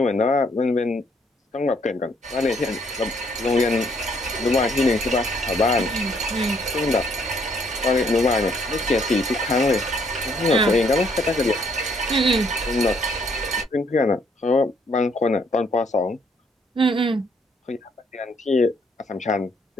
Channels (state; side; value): normal; both; correlation 0.67